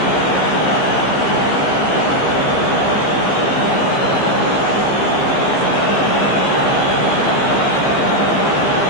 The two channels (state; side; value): late; right; 15 ms